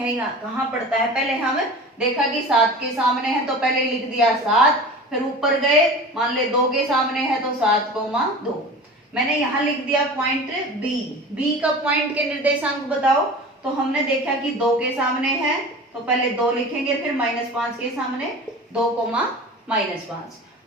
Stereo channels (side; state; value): both; normal; correlation 0.36